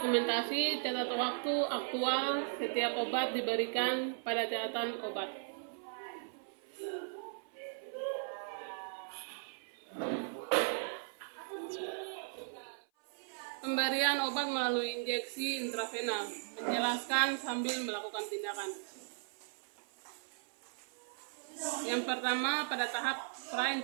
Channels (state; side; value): silent; left; 53 dB below the other